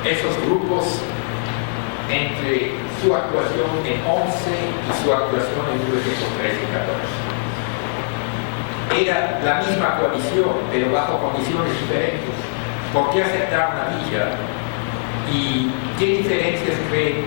esos grupos, entre su actuación en 11 y su actuación en 1913 y 14. Era la misma coalición, pero bajo condiciones diferentes. ¿Por qué aceptaron a Villa? ¿Y qué diferencias creen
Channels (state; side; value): silent; right; digital silence